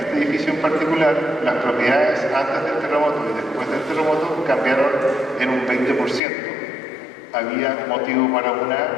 edificio en particular, las propiedades antes del terremoto y después del terremoto cambiaron en un 20%. Había motivo para una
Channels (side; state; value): right; drops out; at 6.2 s